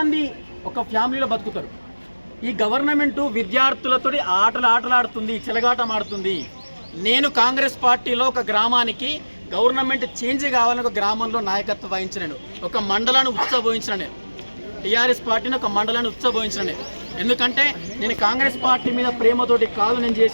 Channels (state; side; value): inverted; both; correlation -1.00